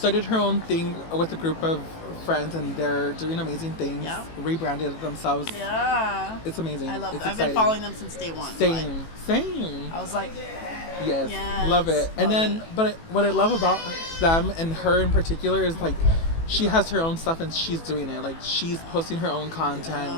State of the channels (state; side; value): late; right; 18 ms